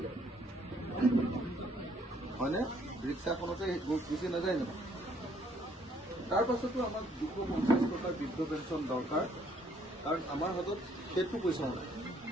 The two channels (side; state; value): both; normal; correlation 0.65